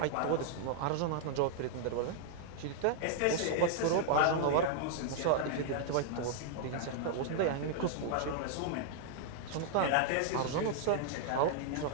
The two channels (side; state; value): both; different; correlation -0.01